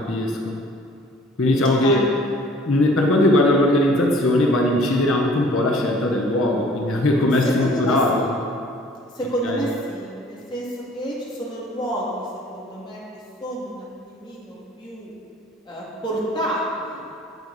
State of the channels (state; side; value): normal; both; correlation 0.53